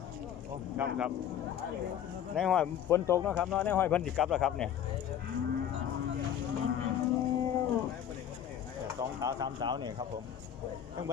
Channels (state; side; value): quieter; right; 9.7 dB